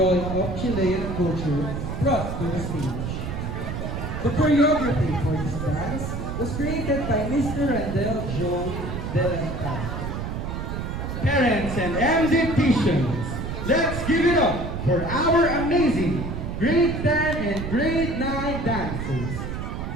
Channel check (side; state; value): right; noise; rumble, 5 dB below the sound